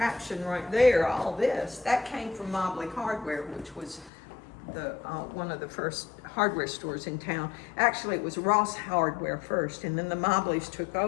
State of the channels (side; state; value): right; drops out; at 4.1 s